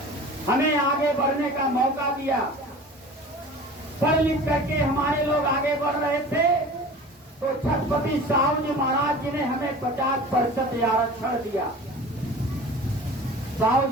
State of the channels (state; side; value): normal; both; correlation 0.39